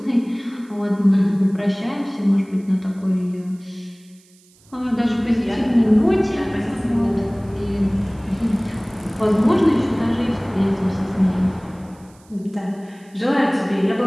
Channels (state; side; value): noise; right; hiss, 30 dB below the sound